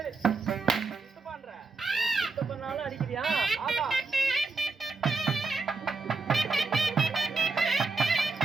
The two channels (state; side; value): quieter; left; 4.0 dB